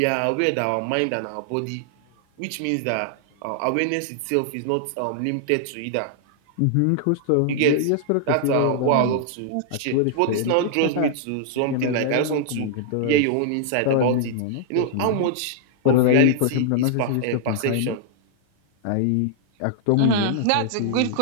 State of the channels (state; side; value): different; both; correlation -0.01